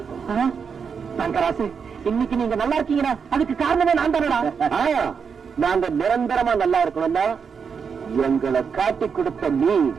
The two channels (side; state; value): left; quieter; 6.2 dB